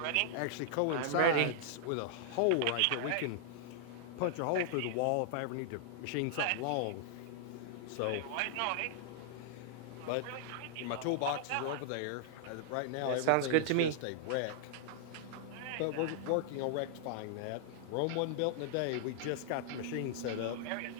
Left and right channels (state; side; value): different; both; correlation -0.01